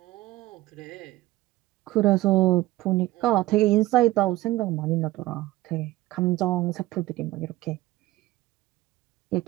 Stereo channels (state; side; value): quieter; left; 17.4 dB